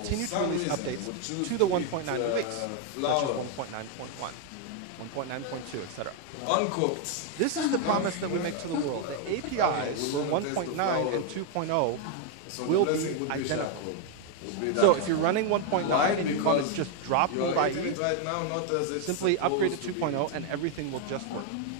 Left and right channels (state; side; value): different; both; correlation 0.01